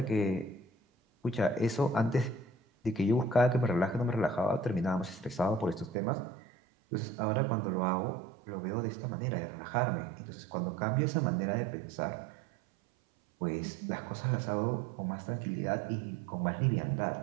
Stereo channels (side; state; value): left; drops out; at 6.0 s